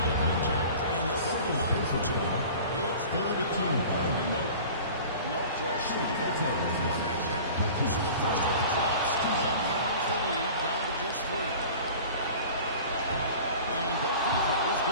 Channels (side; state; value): both; inverted; correlation -0.41